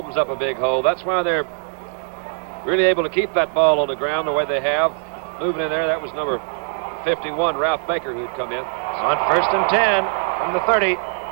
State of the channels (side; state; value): left; silent; digital silence